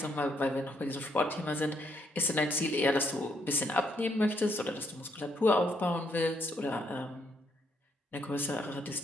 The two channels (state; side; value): normal; both; correlation 0.73